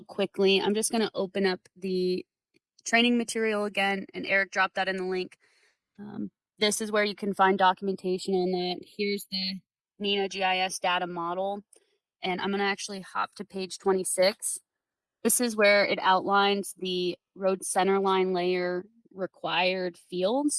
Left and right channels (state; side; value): identical; both; correlation 1.00